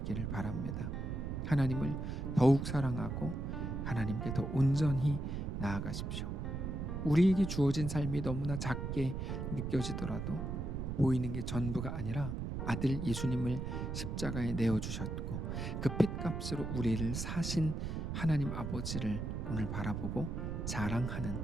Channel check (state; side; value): noise; right; rumble, 3 dB below the sound